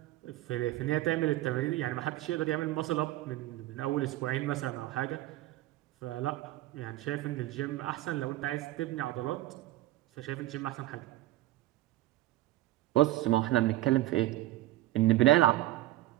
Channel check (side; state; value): left; quieter; 16.0 dB